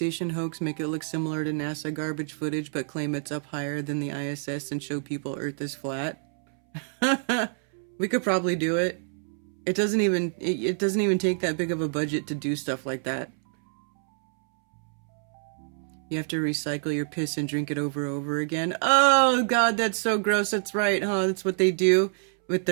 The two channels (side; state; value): left; silent; 60 dB below the other